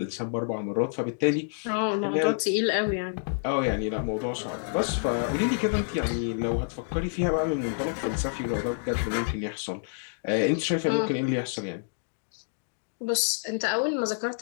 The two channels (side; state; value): right; silent; digital silence